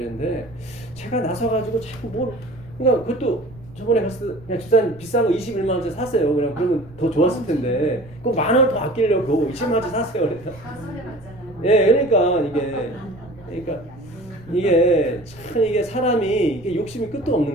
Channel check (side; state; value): right; noise; rumble, 21 dB below the sound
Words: 제가 나서가지고 자꾸 뭘 그러니까 그것도 저번에 갔을 때 그냥 집사님 비싼 거 21만 원짜리 사세요. 그러면 더 좋았을 텐데 그 만 원 더 아끼려고 20만 원짜리 사세요. 그러니까. 다 손해봤잖아요. 그러니까 이게 참 이게 사람이 이게 욕심이 끝도 없는